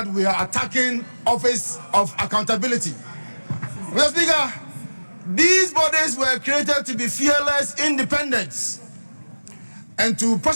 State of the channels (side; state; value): both; inverted; correlation -1.00